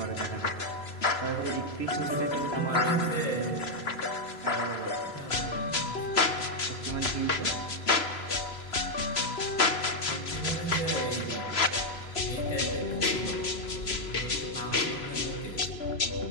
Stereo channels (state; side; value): late; right; 3.0 ms